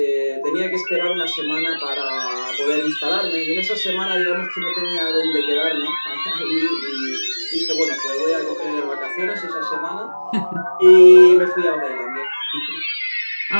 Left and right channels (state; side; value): inverted; both; correlation -1.00